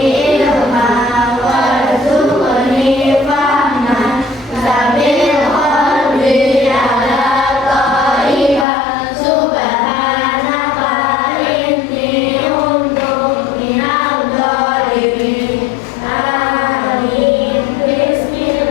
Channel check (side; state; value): right; drops out; at 8.7 s